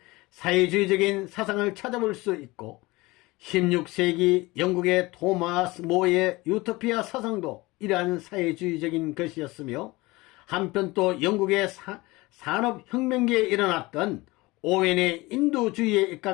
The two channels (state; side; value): quieter; right; 21.8 dB